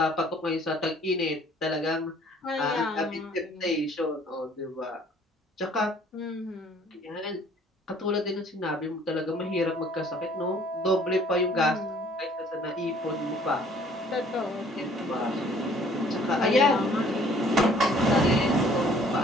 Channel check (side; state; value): both; normal; correlation 0.57